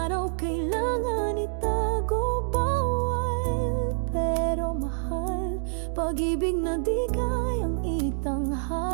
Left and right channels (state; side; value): silent; left; digital silence